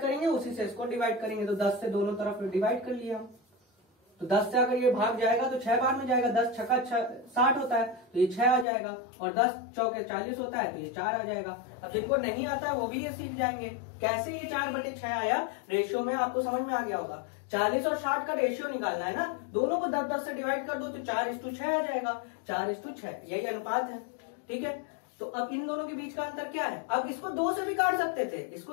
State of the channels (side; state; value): right; drops out; at 8.7 s